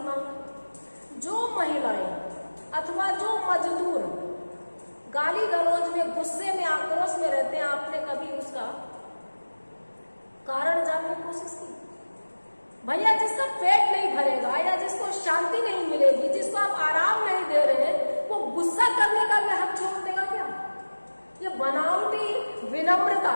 मांगा। जो महिलाएं अथवा जो मजदूर गाली गलौज में, गुस्से में, आक्रोश में रहते हैं, आपने कभी उसका कारण जानने की कोशिश की? भैया जिसका पेट नहीं भरेगा या जिसको शांति नहीं मिलेगी, जिसको आप आराम नहीं दे रहे हैं, वो गुस्सा करने का भी हक छोड़ देगा क्या? ये बनावटी विनम्रता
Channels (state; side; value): inverted; both; correlation -1.00